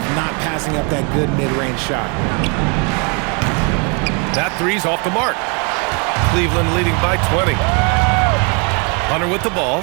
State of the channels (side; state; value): left; quieter; 34.9 dB